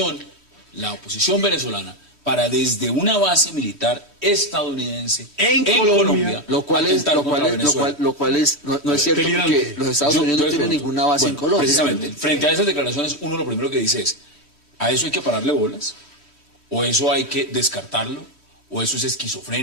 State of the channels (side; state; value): left; late; 3.1 ms